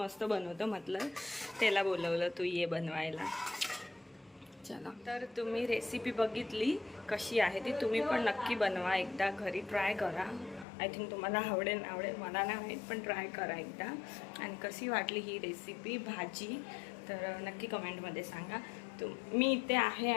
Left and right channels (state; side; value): drops out; right; at 10.7 s